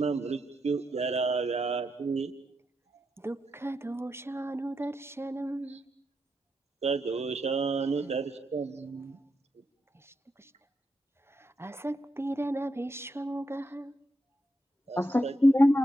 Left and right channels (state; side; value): normal; both; correlation 0.83